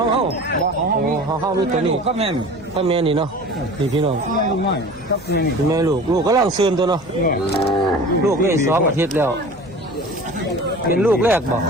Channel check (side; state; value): left; noise; hum, 23 dB below the sound